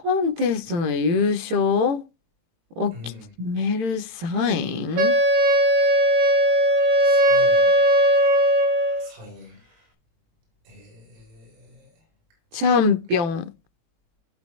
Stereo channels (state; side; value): late; left; 18 ms